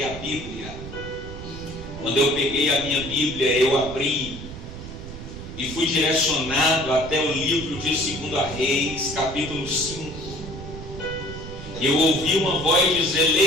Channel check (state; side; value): noise; right; rumble, 11 dB below the sound